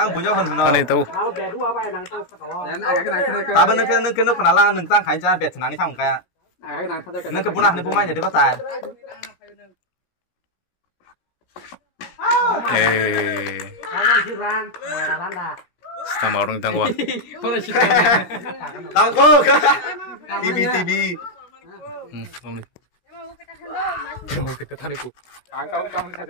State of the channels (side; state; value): right; late; 17 ms